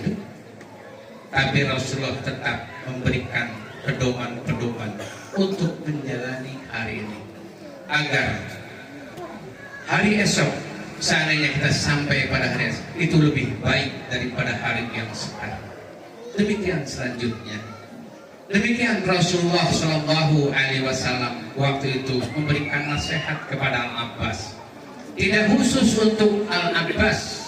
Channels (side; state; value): both; identical; correlation 1.00